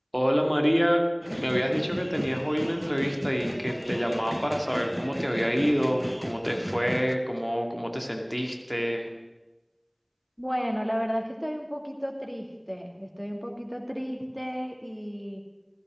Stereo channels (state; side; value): identical; both; correlation 1.00